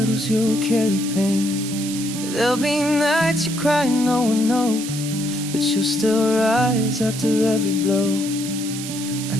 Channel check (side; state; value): right; noise; hiss, 9 dB below the sound